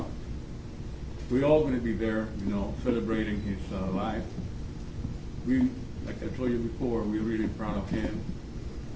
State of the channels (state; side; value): identical; both; correlation 1.00